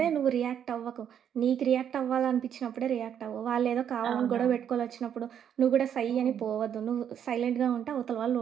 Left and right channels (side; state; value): left; quieter; 9.0 dB